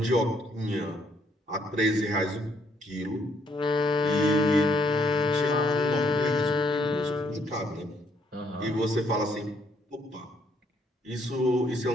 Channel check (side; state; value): both; normal; correlation 0.70